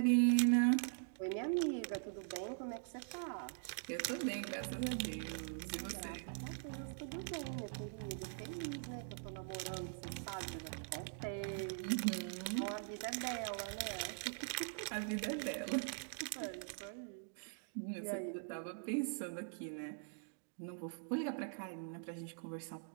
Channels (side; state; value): left; silent; digital silence